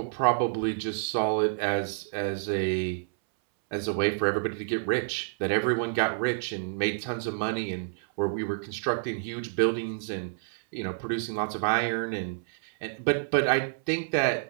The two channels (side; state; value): left; silent; 59 dB below the other